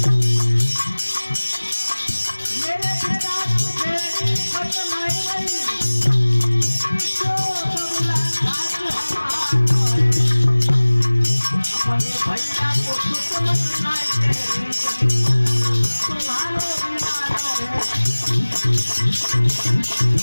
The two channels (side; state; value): both; inverted; correlation -1.00